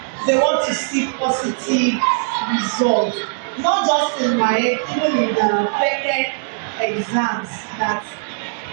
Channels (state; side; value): silent; left; 61 dB below the other